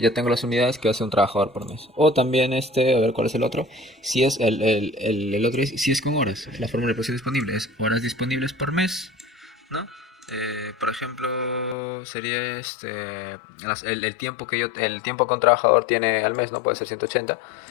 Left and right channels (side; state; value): right; drops out; at 11.8 s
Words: tengo las unidades que hace un trabajador por mes. O también a ver cuál es el otro. Si es el otro, si es con horas. La fórmula de producción disponible es horas disponibles por mes, ¿no? Por ejemplo, sería el tiempo el tiempo que un trabajador tiene al mes, no puede ser 180,